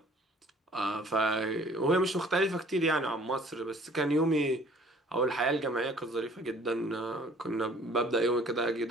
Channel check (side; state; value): both; normal; correlation 0.54